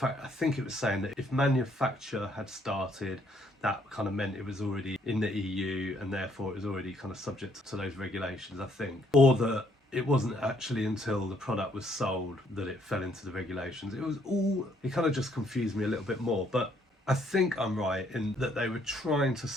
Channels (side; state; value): both; normal; correlation 0.68